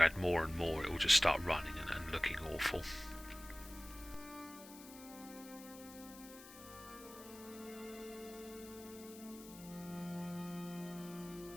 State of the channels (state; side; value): noise; left; hiss, 17 dB below the sound